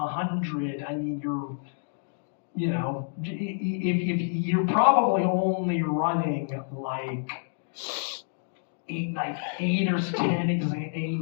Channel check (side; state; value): right; silent; digital silence